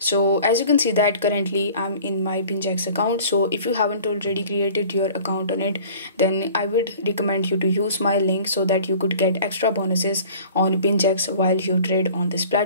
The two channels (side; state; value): both; inverted; correlation -0.46